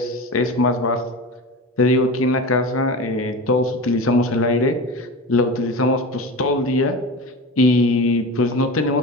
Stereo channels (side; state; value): both; normal; correlation 0.28